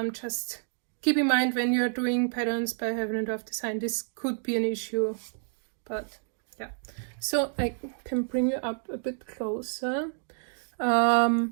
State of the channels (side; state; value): left; silent; 56 dB below the other